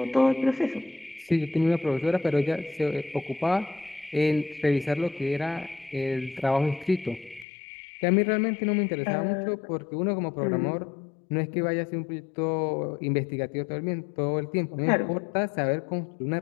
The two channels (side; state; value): right; drops out; at 7.5 s